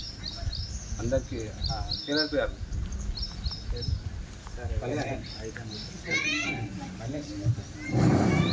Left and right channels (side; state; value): both; identical; correlation 1.00